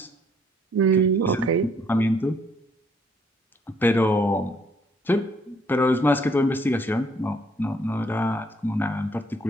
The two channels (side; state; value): both; normal; correlation 0.66